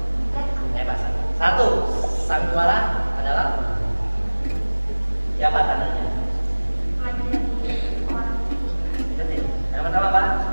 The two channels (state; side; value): inverted; both; correlation -1.00